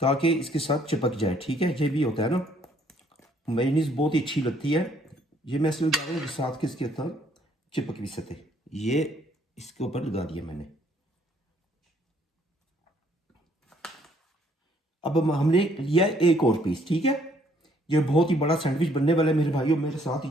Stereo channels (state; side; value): normal; both; correlation 0.65